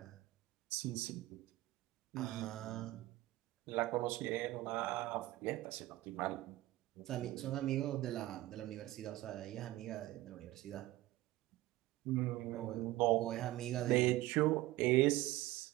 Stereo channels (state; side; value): quieter; left; 17.0 dB